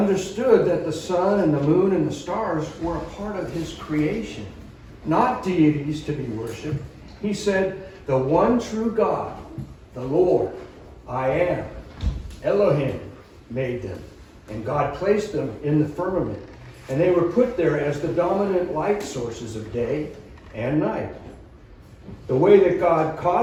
that the sun and the moon and the stars were a part of his creation, not deities to be worshipped. He said, the one true God, the Lord, I am, Elohim, made them. And God placed them in the firmament. And they were put there as the dominant light sources of day and night. The way that God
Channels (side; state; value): both; identical; correlation 1.00